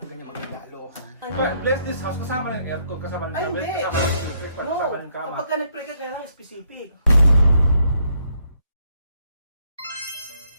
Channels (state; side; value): inverted; both; correlation -0.71